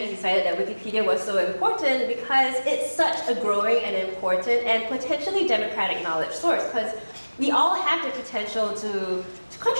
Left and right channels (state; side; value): inverted; both; correlation -1.00